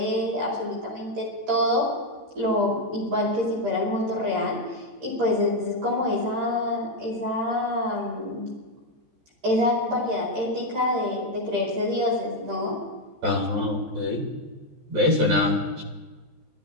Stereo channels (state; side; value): late; left; 13 ms